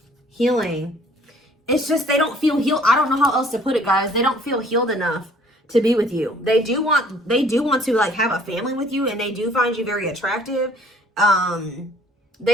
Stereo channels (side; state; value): both; normal; correlation 0.56